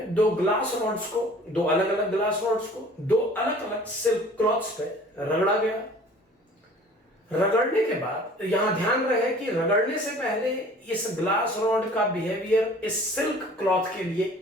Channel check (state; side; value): normal; both; correlation 0.48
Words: दो अलग अलग ग्लास रॉड्स को दो अलग अलग सिल्क क्लॉथ्स पे रगड़ा गया। रगड़ने के बाद यहां ध्यान रहे कि रगड़ने से पहले इस ग्लास रॉड का बिहेवियर इस सिल्क क्लॉथ के लिए